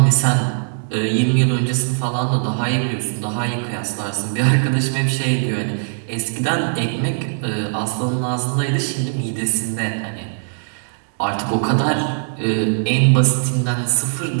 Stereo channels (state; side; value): silent; left; digital silence